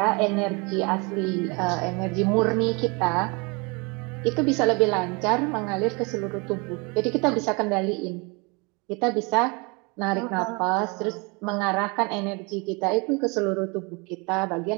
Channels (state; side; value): quieter; left; 29.6 dB